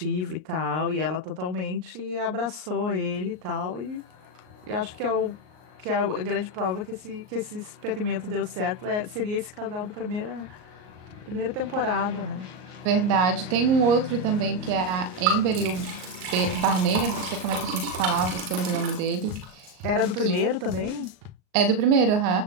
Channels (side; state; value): left; late; 38 ms